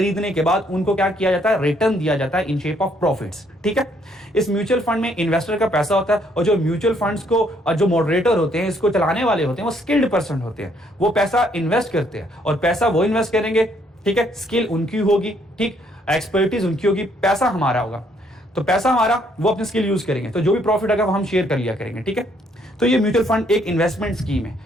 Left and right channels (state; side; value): normal; both; correlation 0.68